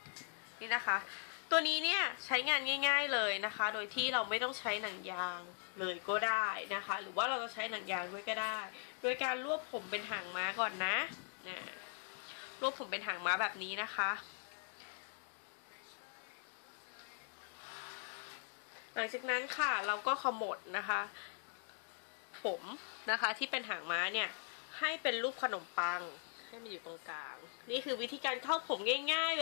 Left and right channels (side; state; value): right; silent; 51 dB below the other